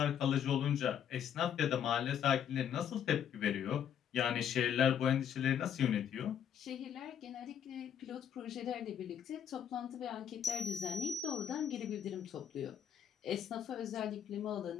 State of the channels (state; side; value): quieter; right; 8.8 dB